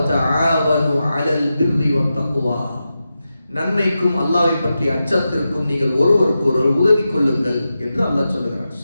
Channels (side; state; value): both; inverted; correlation -0.91